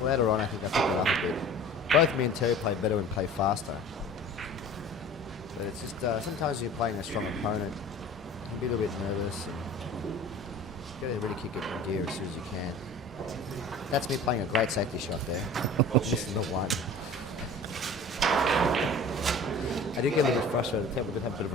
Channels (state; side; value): normal; both; correlation 0.42